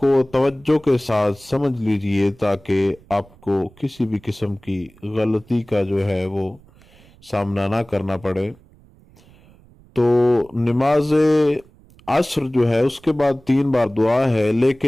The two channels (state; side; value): noise; right; rumble, 27 dB below the sound